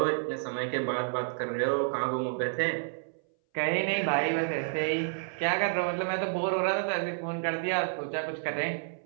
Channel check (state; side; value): silent; left; 58 dB below the other